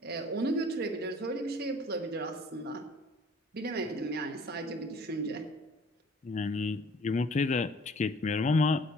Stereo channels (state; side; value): normal; both; correlation 0.53